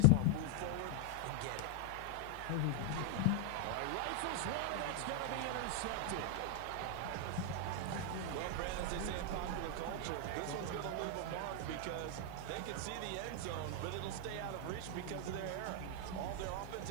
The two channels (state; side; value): different; both; correlation 0.00